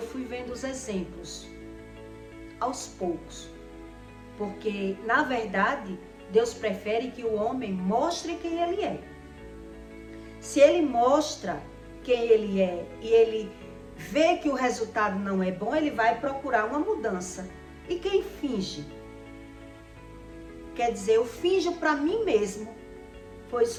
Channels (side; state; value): both; identical; correlation 1.00